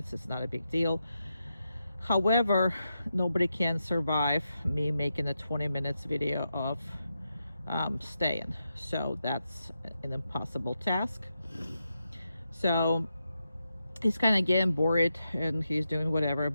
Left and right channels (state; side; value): inverted; both; correlation -0.87